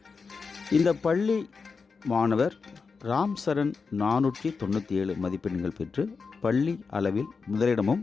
இந்த பள்ளி மாணவர் ராம் சரண் 497 மதிப்பெண்கள் பெற்று பள்ளி அளவில்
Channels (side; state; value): right; quieter; 4.9 dB